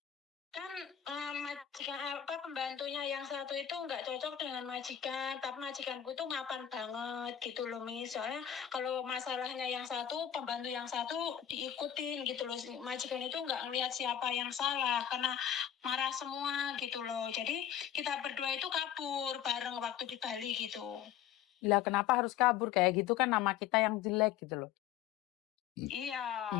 Kan majikan pembantunya yang satu itu nggak cocok dengan majikan, tapi majikanku itu mapan banget gitu loh, Miss. Soalnya kalau masalahnya yang satu, pembantu yang satu diikutin gitu loh. Majikan itu nggak ngelihat siapa yang salah, karena marah semua gitu loh. Jadi kita berdua itu kabur bareng waktu di Bali gitu. Lah kenapa harus kabur kayak gitu, kan nama kita yang jelek gitu loh. Iya,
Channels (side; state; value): right; quieter; 10.1 dB